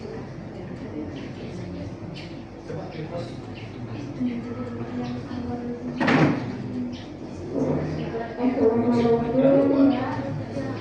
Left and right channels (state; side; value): identical; both; correlation 1.00